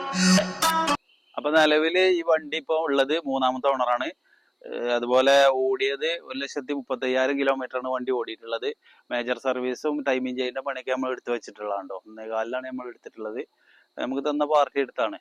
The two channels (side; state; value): both; identical; correlation 1.00